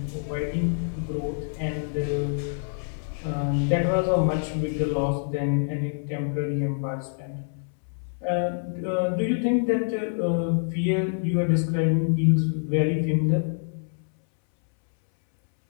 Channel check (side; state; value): right; silent; 61 dB below the other